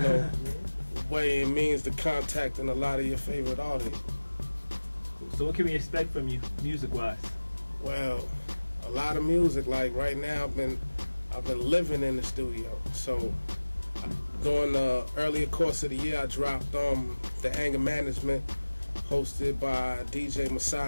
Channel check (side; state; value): both; inverted; correlation -1.00